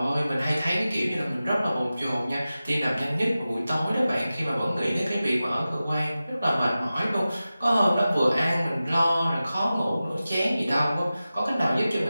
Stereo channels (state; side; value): inverted; both; correlation -0.95